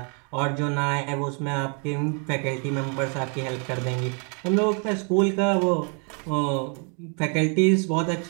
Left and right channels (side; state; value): left; quieter; 38.6 dB